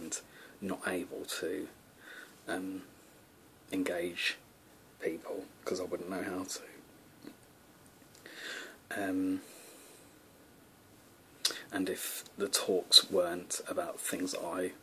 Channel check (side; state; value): both; identical; correlation 1.00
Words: not able to engage people because I wouldn't know how to. And if the talks weren't about things I